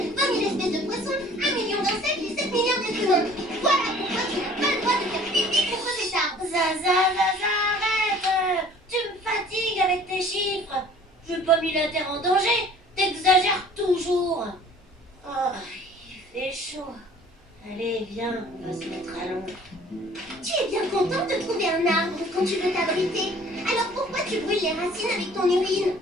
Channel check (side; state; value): both; normal; correlation 0.51